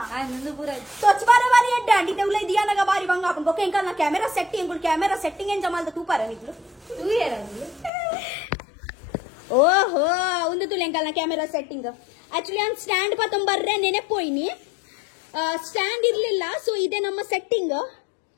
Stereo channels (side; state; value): right; drops out; at 7.9 s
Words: तो अच्छबारे वाली है डांडी ते उले दिया ना बारी बंगा अपन को केंका ना कैमरा सेटिंग एन जमाल तू पारा निकलो तू ये रंग ಓಹೋ ಒಂದು ತುಲೆಂಕಲ್ನ ಕ್ಯಾಮೆರಾ ಸೆಟ್ಟಿಂಗ್. ಆಕ್ಚುಲಿ ನಾನು ಸ್ಟ್ಯಾಂಡ್ ಪತ್ತೊಂಬರ್ರೆ ನೆನೆಪೋಯ್ನಿ, ಸ್ಟ್ಯಾಂಡ್ ಇರ್ಲಿಲ್ಲ. ಸೊ ಇದೆ ನಮ್ಮ ಸೆಟ್ಟಿಂಗ್,